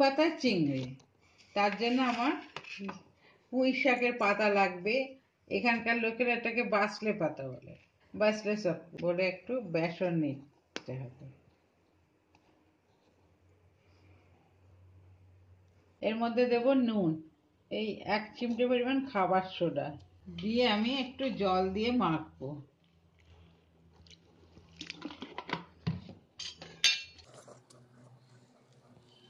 পাতার চিংড়ি। তার জন্য আমার পুঁই শাকের পাতা লাগবে। এখানকার লোকেরা এটাকে বাসলে পাতা বলে, বাসলে শাক বলে। একটু বেসন নিতে হবে। এর মধ্যে দেব নুন, এই 1 চিমটে পরিমাণ খাবার সোডা দিয়ে আমি একটু জল দিয়ে মাখবো।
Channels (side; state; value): both; identical; correlation 1.00